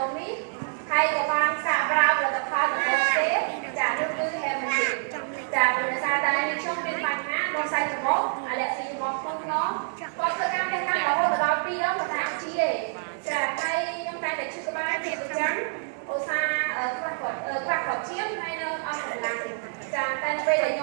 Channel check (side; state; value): left; silent; 60 dB below the other